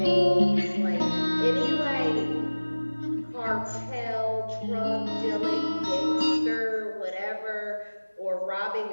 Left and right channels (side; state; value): both; inverted; correlation -1.00